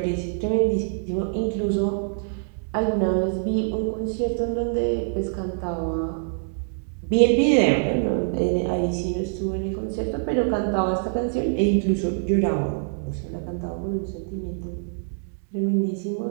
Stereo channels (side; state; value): left; silent; digital silence